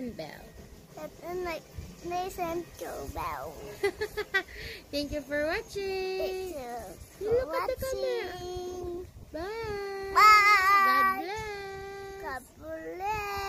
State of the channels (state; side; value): identical; both; correlation 1.00